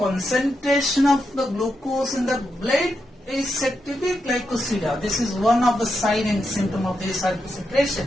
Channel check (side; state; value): both; normal; correlation 0.85